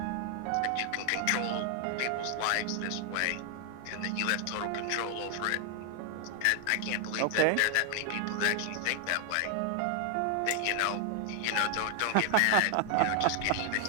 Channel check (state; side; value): different; both; correlation 0.00